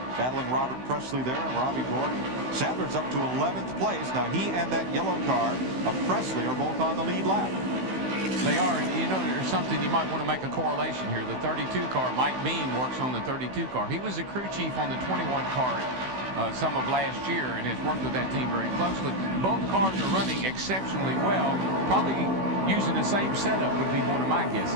battling Robert Presley there and Robbie Gordon. Sadler's up to 11th place. Now he and that yellow car of Presley are both on the lead lap. They are, and you know, there's something you might want to make a correlation here. The 32 car, Mike Bean works on the 32 car. He was the crew chief on the 21 car some of last year and has worked with that team very closely. Both cars are running exceptionally well. Probably using the same setup would be one of my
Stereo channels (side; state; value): left; late; 16 ms